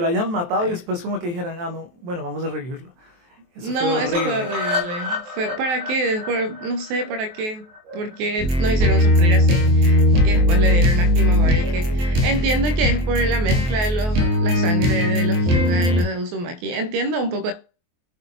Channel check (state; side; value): late; left; 23 ms